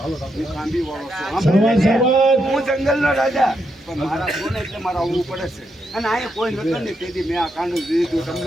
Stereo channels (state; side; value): normal; both; correlation 0.81